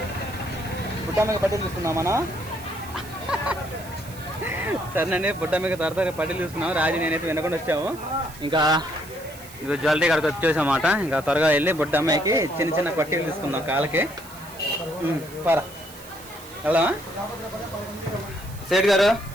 బుట్టమ్మకి పట్టీలు తీసుకున్నాం మనం. సరేనండి, బుట్టమ్మకి త్వరగా పట్టీలు తీసుకున్నాం. రాజు నేనైతే వినకుండా వచ్చాము. ఇంకా ఇది జ్యువెలరీ కాడికి వచ్చేసామాట. ఇంకా త్వరగా వెళ్ళి బుట్టమ్మకి చిన్న చిన్న పట్టీలు తీసుకుందాం కాళ్ళకి. పరా వెళ్దామా? సేట్ గారు,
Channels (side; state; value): right; noise; hiss, 18 dB below the sound